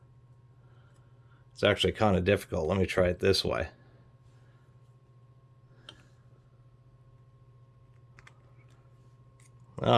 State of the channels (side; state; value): both; identical; correlation 1.00